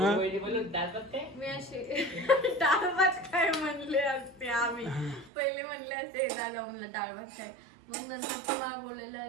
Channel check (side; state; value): left; drops out; at 5.3 s